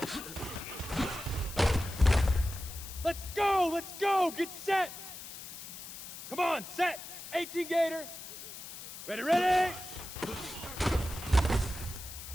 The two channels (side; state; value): left; noise; hiss, 11 dB below the sound